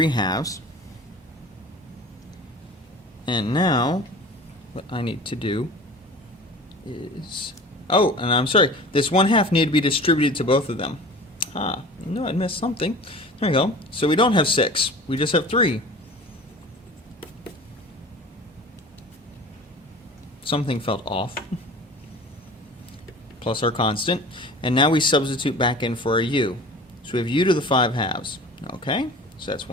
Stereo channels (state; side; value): normal; both; correlation 0.40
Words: And now what I need to do is, oh, and I'm sorry, this 1/2 need to be distributed to both of them. No, I missed something. There we go. So we don't have 6, we just have 3. Something felt off. Plus our constant. And now we substitute back in for a u. So we have u to the 5/2. Okay, so that's